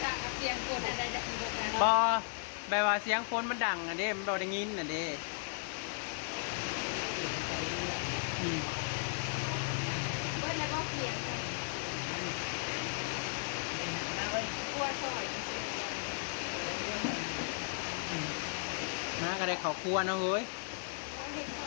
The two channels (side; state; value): right; silent; 54 dB below the other